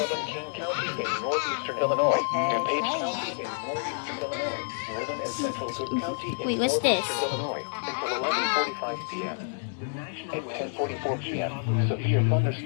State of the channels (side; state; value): right; silent; 59 dB below the other